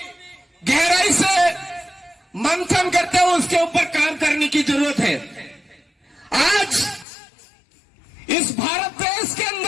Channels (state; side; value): drops out; right; at 7.1 s